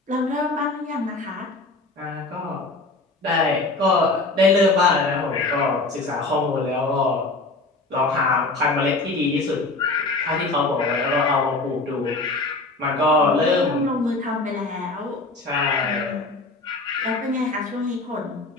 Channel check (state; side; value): quieter; right; 3.2 dB